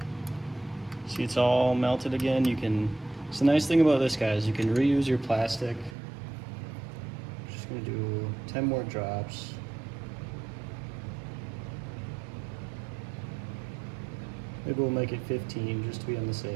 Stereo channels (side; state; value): left; drops out; at 6.0 s